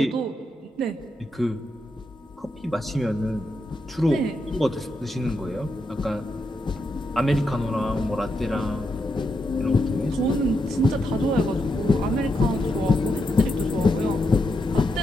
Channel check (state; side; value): normal; both; correlation 0.83